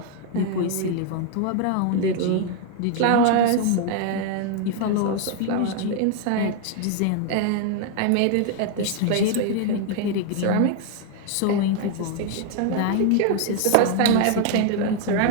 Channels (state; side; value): different; both; correlation 0.00